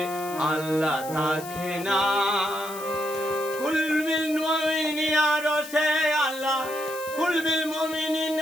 আল্লাহ থাকে না। কুলবিল মুমিনিন আরশে আল্লাহ, কুলবিল মুমিনিন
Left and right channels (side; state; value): left; noise; hiss, 14 dB below the sound